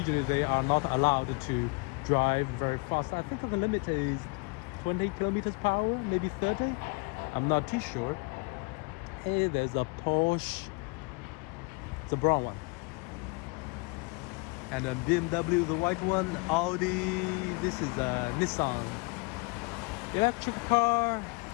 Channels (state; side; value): quieter; right; 30.4 dB